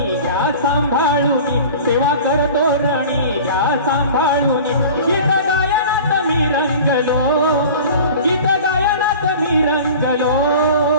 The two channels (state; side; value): inverted; both; correlation -0.40